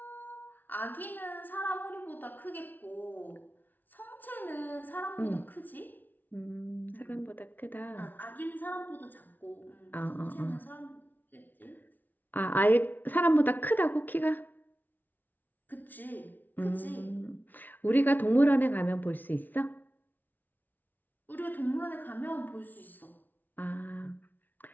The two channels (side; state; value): right; late; 0.084 ms